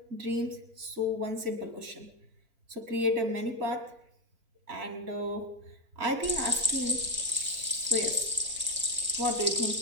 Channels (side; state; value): left; late; 4.4 ms